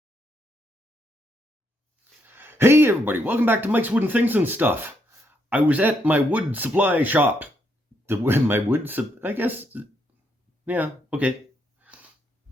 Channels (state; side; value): normal; both; correlation 0.76